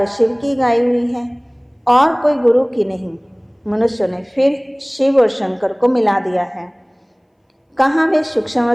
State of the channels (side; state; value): both; identical; correlation 1.00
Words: शिव की गाई हुई है और कोई गुरु की नहीं। मनुष्यों ने फिर शिव और शंकर को मिला दिया है। कहाँ वे सूक्ष्म